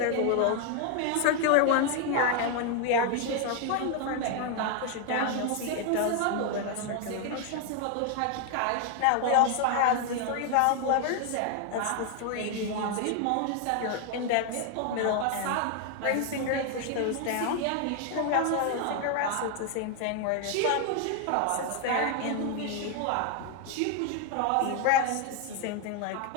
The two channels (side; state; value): both; different; correlation 0.01